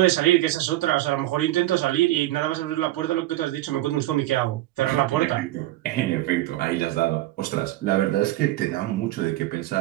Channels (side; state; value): left; quieter; 16.1 dB